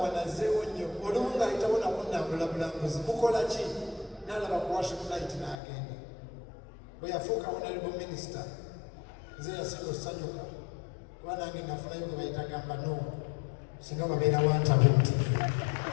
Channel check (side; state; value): right; drops out; at 5.6 s